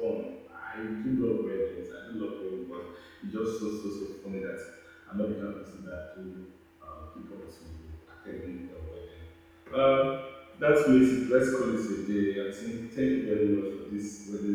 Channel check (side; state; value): both; identical; correlation 1.00